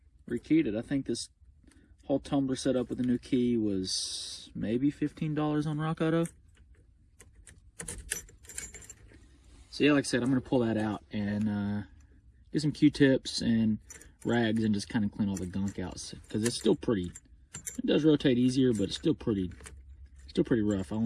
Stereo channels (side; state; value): both; identical; correlation 1.00